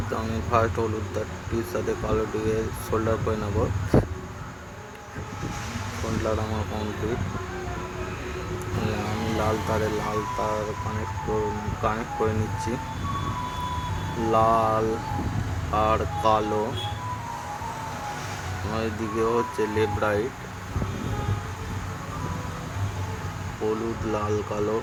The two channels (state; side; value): identical; both; correlation 1.00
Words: তো আমি ফার্স্ট হলুদ তারটির সাথে কালোটিকে সোল্ডার করে নেব। সোল্ডার আমার কমপ্লিট। আমি লাল তারে লাল তার কানেক্ট করে নিচ্ছি। লাল আর কালো, এদিকে হচ্ছে লেফট রাইট। হলুদ লাল কালো